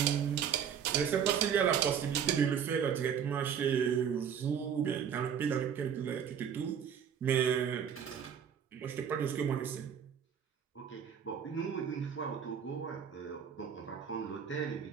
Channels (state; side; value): quieter; left; 7.9 dB